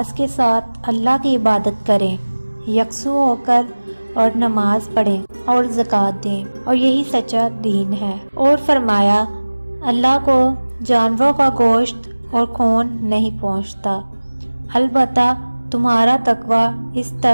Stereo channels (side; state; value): both; inverted; correlation -1.00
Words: کے ساتھ اللہ کی عبادت کریں، یکسو ہو کر اور نماز پڑھیں اور زکوٰۃ دیں، اور یہی سچا دین ہے۔ اور فرمایا اللہ کو جانوروں کا گوشت اور خون نہیں پہنچتا، البتہ تمہارا تقویٰ اس